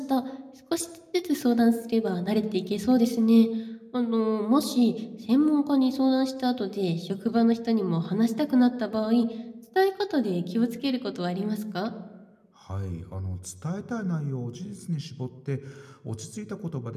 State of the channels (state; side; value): identical; both; correlation 1.00